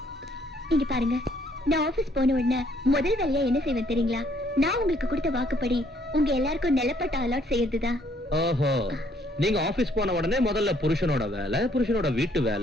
இங்க பாருங்க, நான் ஆபீஸ் போன உடனே முதல் வேலையா என்ன செய்வேன் தெரியுங்களா? நான் உங்களுக்கு கொடுத்த வாக்குப்படி உங்க எல்லாருக்கும் நிலப்பட்ட அலாட் செய்யறதுதான். ஓஹோ, நீங்க ஆபீஸ் போன உடனே முதல்ல புருஷனோட வேலை, புருஷனோட வீட்டு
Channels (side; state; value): both; normal; correlation 0.65